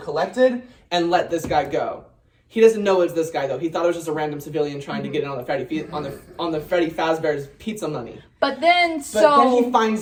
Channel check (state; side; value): identical; both; correlation 1.00